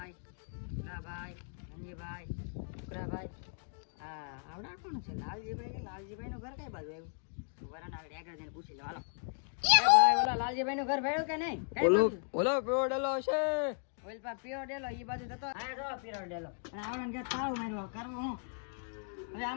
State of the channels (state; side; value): silent; right; 54 dB below the other